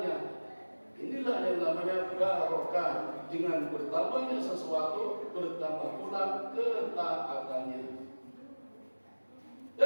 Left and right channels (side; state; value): both; inverted; correlation -1.00